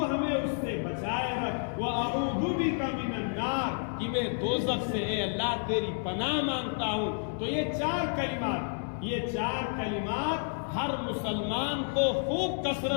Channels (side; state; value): right; silent; 57 dB below the other